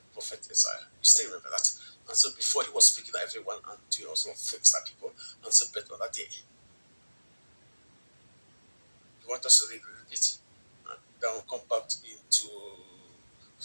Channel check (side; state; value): both; inverted; correlation -1.00